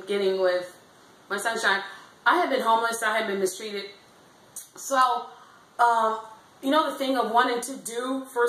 getting with my sunshine, I had been homeless. I had been mistreated. So, the thing of wanting to do for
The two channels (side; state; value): both; identical; correlation 1.00